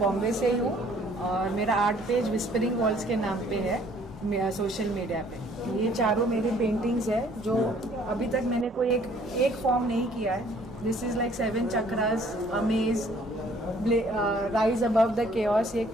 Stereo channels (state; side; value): normal; both; correlation 0.59